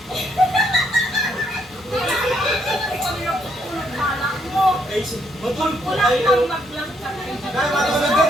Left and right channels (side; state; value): both; normal; correlation 0.73